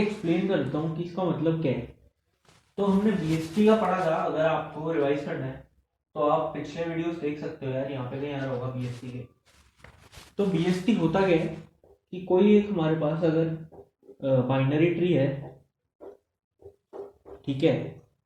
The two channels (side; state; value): both; identical; correlation 1.00